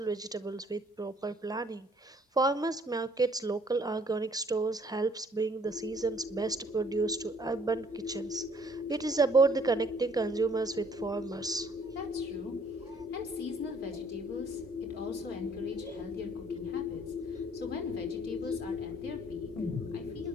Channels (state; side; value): normal; both; correlation 0.61